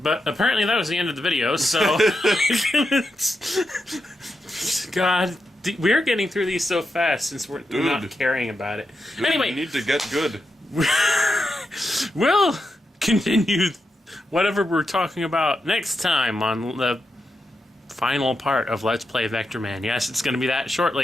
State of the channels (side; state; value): both; normal; correlation 0.87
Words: But apparently that was the end of the video, so... God, we're getting through these so fast since we're not caring about it. Dude, anyway... we need to get good. We'll continue whatever we're talking about next time on the final part of Let's Play Vectorman. Yes, it's going to be that short,